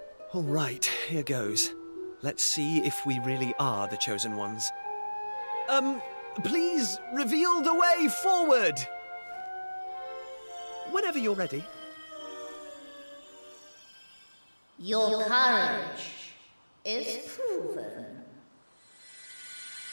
All right, here goes. Let's see if we really are the chosen ones. Please reveal the way forward! Whenever you're ready. Your courage is proven.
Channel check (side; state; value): both; inverted; correlation -1.00